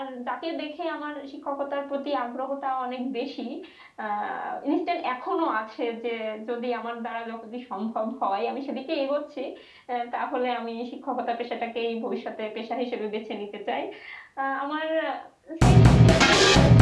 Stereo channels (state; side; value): identical; both; correlation 1.00